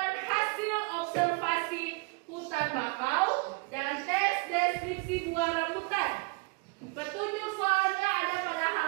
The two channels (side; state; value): left; quieter; 30.6 dB